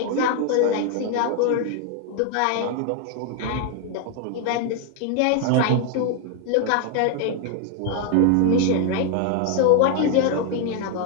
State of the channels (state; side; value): different; both; correlation 0.01